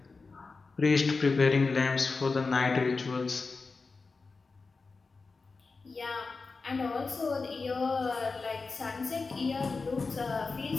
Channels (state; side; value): quieter; right; 4.2 dB